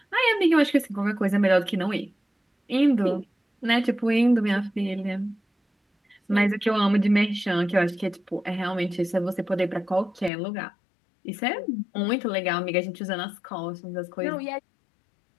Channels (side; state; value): right; drops out; at 10.3 s